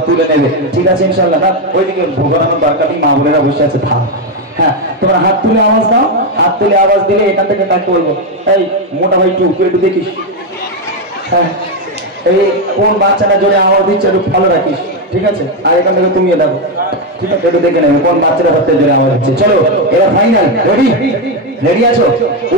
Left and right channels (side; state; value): both; normal; correlation 0.06